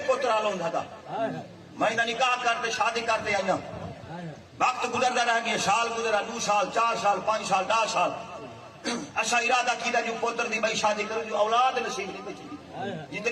پترا لوں تھا میں نہ نکاح کرتے شادی کرتے آئینا وقت گزرتا رہ گیا سال گزرا 2 سال 4 سال 5 سال 10 سال ایسا ارادہ کیتا جو پتر دی بھائی شادی کرو جو اولاد نصیب نہیں بچی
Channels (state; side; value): identical; both; correlation 1.00